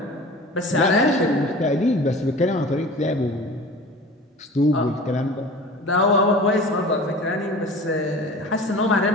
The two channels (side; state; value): both; normal; correlation 0.39